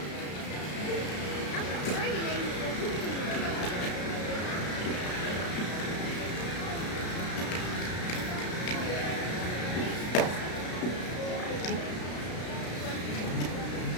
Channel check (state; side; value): late; right; 33 ms